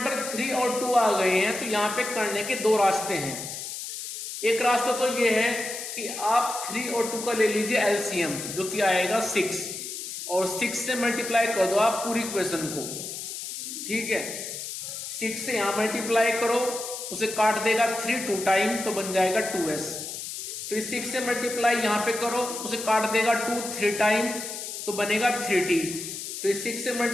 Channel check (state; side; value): noise; left; hiss, 7 dB below the sound